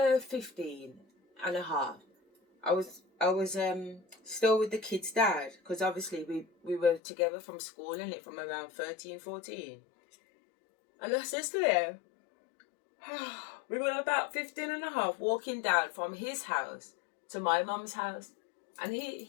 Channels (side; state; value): right; drops out; at 7.0 s